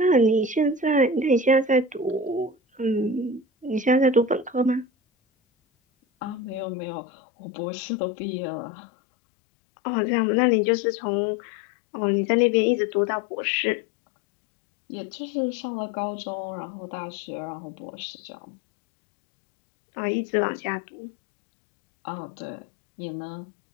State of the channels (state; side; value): drops out; right; at 6.7 s